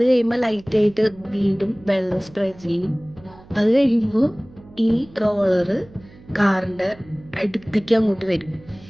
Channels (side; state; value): right; noise; hum, 23 dB below the sound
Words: കഴിയുമ്പോൾ ലൈറ്റായിട്ട് വീണ്ടും വെള്ളം സ്പ്രേ ചെയ്യും. അത് കഴിയുമ്പോൾ ഈ റോളറ് കാറിൻ്റെ അടുത്തേക്ക് അങ്ങോട്ട് വരും.